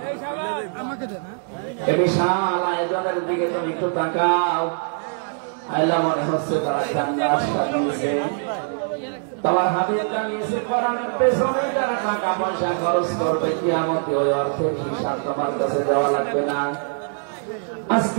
এই বিশাল আয়োজনের দিকে তুমি একটু তাকাও। আল্লাহ মনে হচ্ছে তারা জান্নাত সাজিয়েছে, তোমার হাবিব জানিয়েছে কোরআনের পেছনে যারা টাকা পয়সা খরচ করবে কিয়ামতে ওই অর্থের হিসাব তোমার কাছে দেওয়া লাগবে না।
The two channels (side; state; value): left; silent; 63 dB below the other